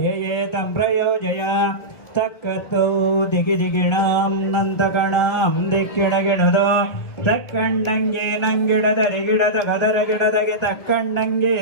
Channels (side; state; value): right; late; 1.3 ms